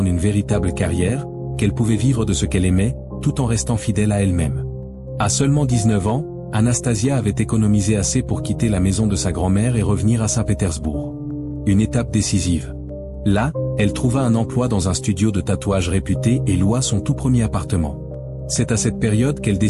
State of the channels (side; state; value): both; identical; correlation 1.00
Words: une véritable carrière, qu'elle pouvait vivre de ce qu'elle aimait, tout en restant fidèle à elle-même. À seulement 19 ans, Anastasia avait économisé assez pour quitter la maison de sa grand-mère et revenir à Saint-Pétersbourg. Une étape décisive. Là, elle trouva un emploi dans un studio de tatouage réputé et loua son tout premier appartement. C'est à cette période qu'elle